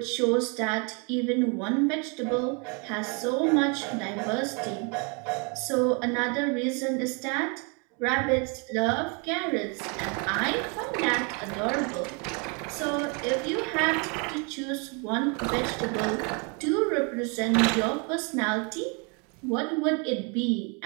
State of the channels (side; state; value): left; quieter; 34.3 dB